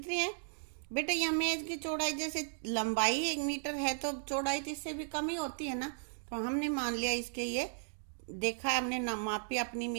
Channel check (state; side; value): silent; left; digital silence